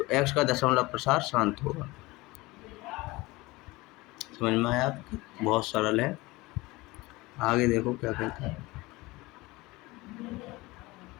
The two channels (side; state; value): right; quieter; 21.4 dB